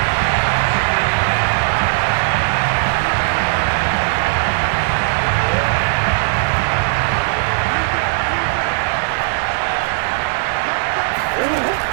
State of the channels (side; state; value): left; silent; digital silence